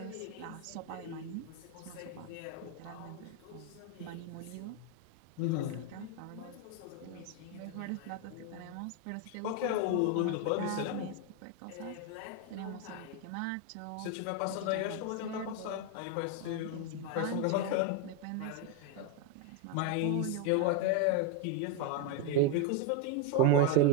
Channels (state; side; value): different; both; correlation 0.01